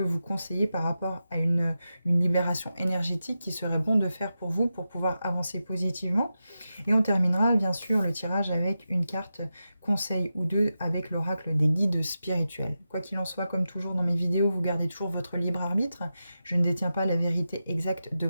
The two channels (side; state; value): both; inverted; correlation -0.91